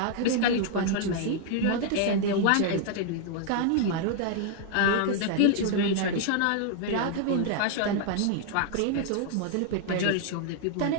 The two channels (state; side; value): different; both; correlation 0.00